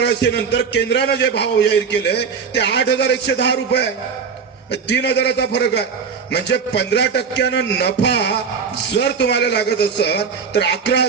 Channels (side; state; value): left; quieter; 6.0 dB